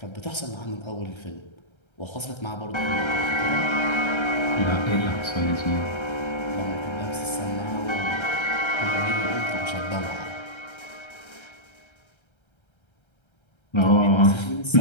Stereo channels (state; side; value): late; right; 1.3 ms